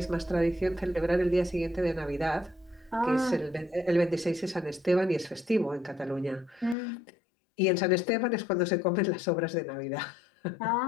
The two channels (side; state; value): right; drops out; at 6.8 s